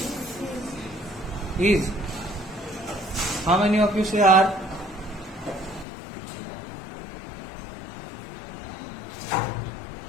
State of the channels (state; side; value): drops out; right; at 5.9 s